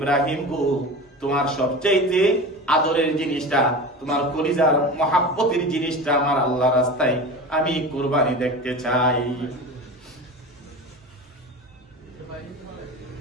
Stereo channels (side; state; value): both; normal; correlation 0.31